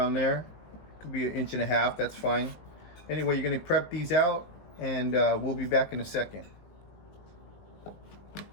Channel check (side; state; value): right; late; 19 ms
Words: there. Could be 1.5 inches, that's fine. Anyway, you're gonna prep these out and we'll be back in a second.